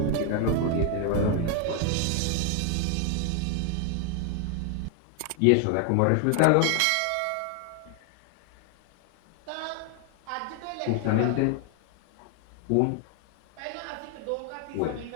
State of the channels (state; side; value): different; both; correlation 0.00